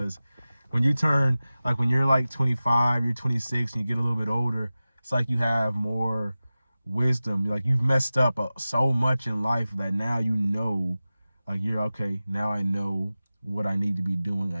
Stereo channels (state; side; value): inverted; both; correlation -0.96